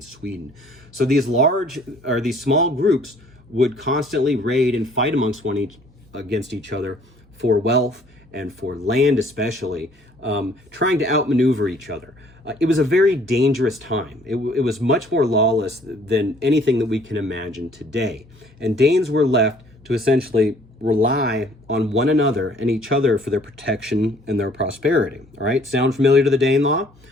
Sweden. So these small groups would constantly raid and fight against each other for wealth and for land especially, trying to outmaneuver each other. It was a very dangerous time. It was much more lawless than anything that we can imagine today. And Danes were left to essentially rely on one another and each other for their protection and their prosperity. All right, sound familiar to the Danelaw?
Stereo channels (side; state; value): both; normal; correlation 0.59